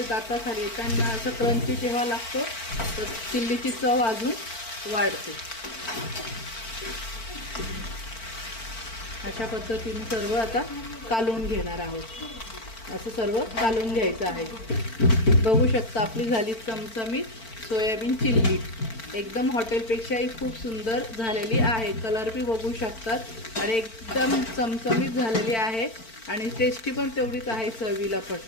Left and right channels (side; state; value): right; late; 4.5 ms